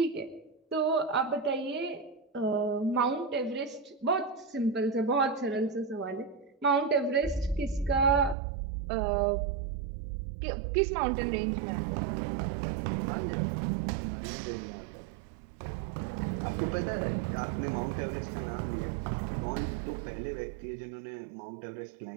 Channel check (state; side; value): drops out; left; at 8.3 s